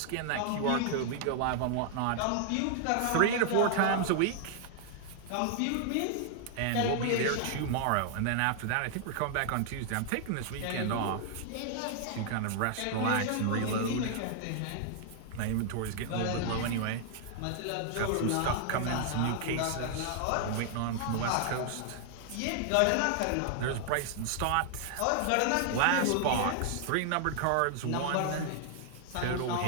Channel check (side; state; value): both; different; correlation 0.00